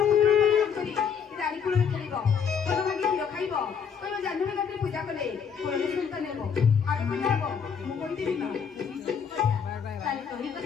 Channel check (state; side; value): quieter; right; 6.9 dB